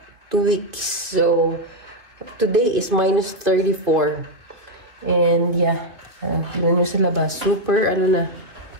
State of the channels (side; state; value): left; late; 2.4 ms